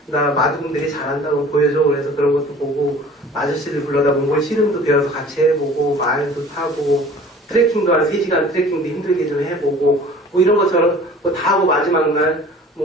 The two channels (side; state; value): both; normal; correlation 0.47